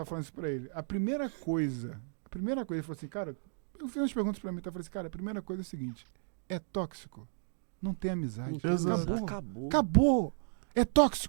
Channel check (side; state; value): left; silent; digital silence